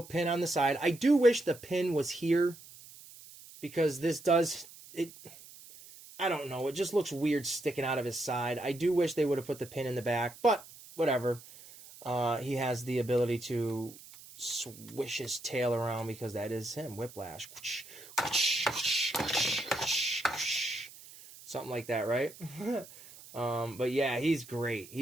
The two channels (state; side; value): noise; right; hiss, 19 dB below the sound